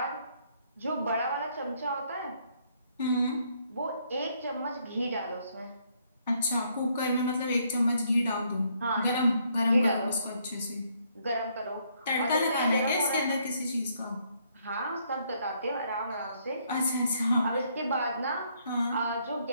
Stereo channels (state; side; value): inverted; both; correlation -0.70